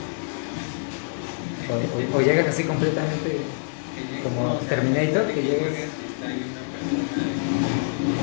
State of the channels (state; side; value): silent; right; digital silence